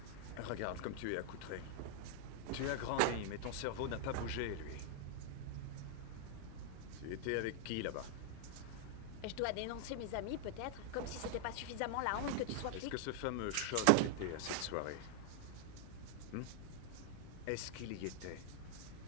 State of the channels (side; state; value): both; different; correlation 0.00